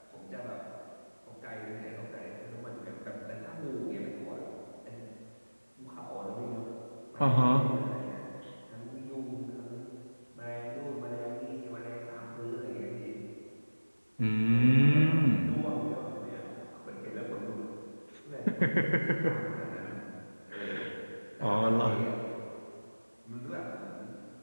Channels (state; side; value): inverted; both; correlation -1.00